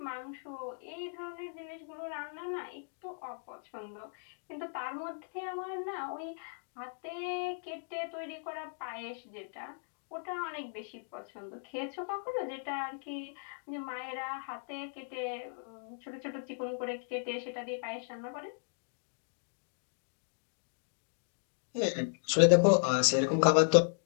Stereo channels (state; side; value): silent; right; digital silence